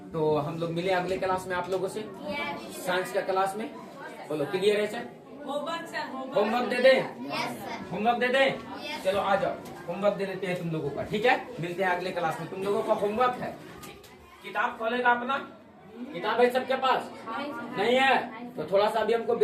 तो हम लोग मिले अगले क्लास में आप लोगों से, साइंस का क्लास में। बोलो क्लियर है सर? होमवर्क सर होमवर्क दे दें? Yes sir. होमवर्क दे दें? Yes. चलो आ जाओ, होमवर्क दे देते हैं तुम लोगों का, ठीक है? मिलते हैं अगले क्लास में। तुम लोगों का होमवर्क है, किताब खोलेगा अपना, किताब है सबके पास? नहीं है तो थोड़ा सा अभी हमको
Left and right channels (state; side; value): identical; both; correlation 1.00